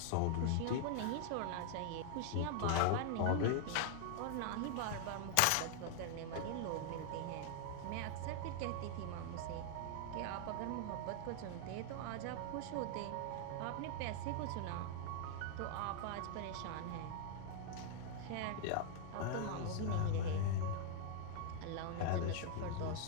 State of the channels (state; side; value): different; both; correlation 0.00